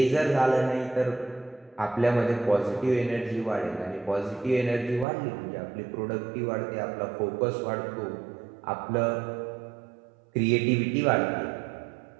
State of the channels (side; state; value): left; drops out; at 5.1 s